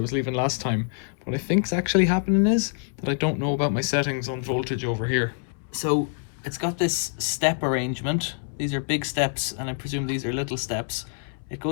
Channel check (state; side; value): silent; right; 61 dB below the other